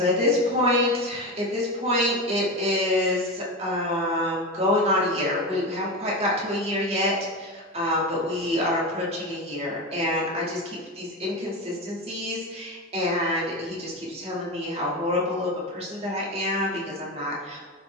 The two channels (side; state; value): both; normal; correlation 0.20